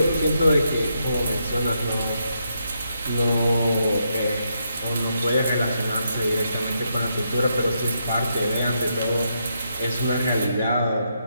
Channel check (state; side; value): inverted; both; correlation -0.80